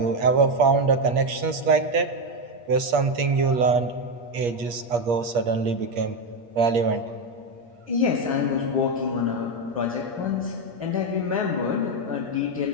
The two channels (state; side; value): late; left; 8.5 ms